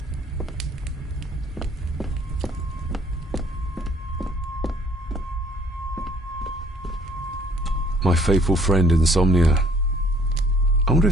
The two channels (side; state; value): both; normal; correlation 0.59